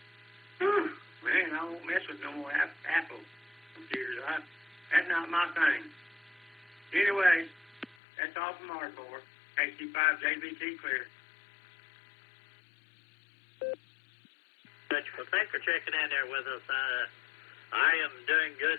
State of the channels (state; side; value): drops out; right; at 8.0 s